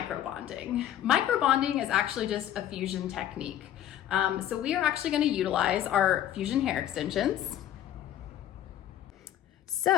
Microbonding is actually just a fusion technique. So we are actually going to utilize our fusion hair extensions.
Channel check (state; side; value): quieter; right; 11.6 dB